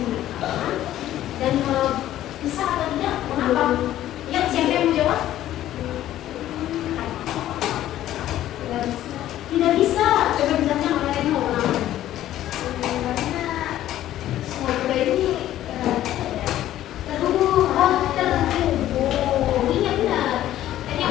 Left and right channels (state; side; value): quieter; right; 13.1 dB